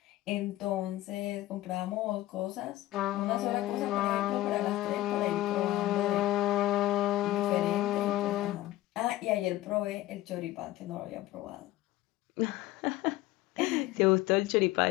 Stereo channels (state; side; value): quieter; right; 15.9 dB